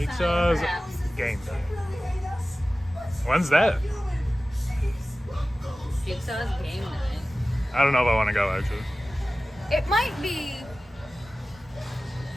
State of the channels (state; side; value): normal; both; correlation 0.96